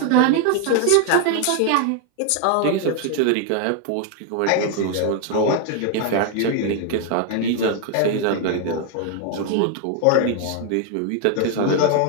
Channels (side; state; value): both; different; correlation 0.00